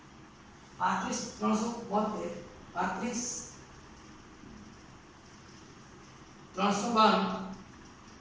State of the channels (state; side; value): identical; both; correlation 1.00